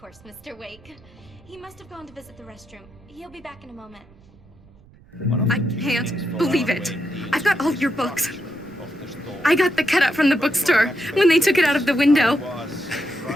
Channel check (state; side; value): noise; right; rumble, 26 dB below the sound